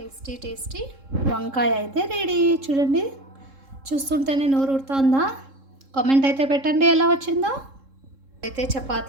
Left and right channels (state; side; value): late; left; 3.7 ms